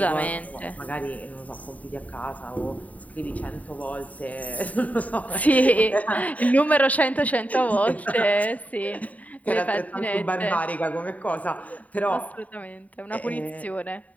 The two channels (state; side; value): late; right; 0.071 ms